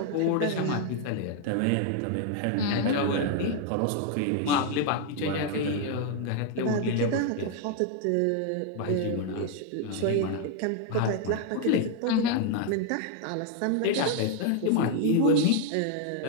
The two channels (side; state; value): both; different; correlation 0.00